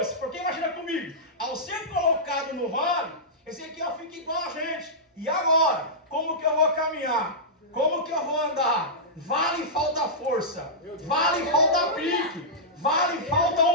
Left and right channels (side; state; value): both; normal; correlation -0.14